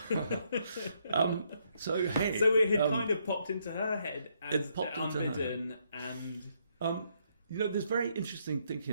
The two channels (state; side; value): inverted; both; correlation -0.73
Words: So it had kind of popped into her head as unbidden, and there's very interesting